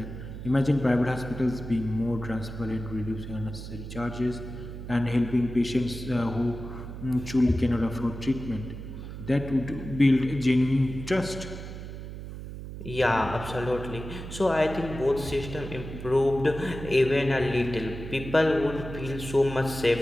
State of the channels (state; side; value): noise; right; hum, 10 dB below the sound